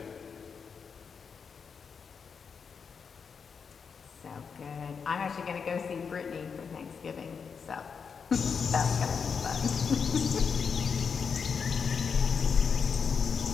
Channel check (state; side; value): quieter; right; 6.0 dB